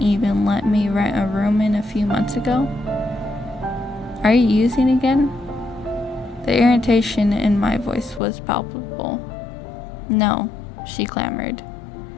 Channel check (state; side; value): drops out; right; at 8.2 s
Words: even let me rent a room in a few months ago? Are you using again? The irritation in my voice was palpable. No, she clamored.